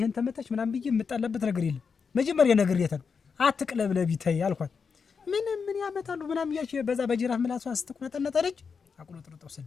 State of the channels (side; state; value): right; quieter; 5.7 dB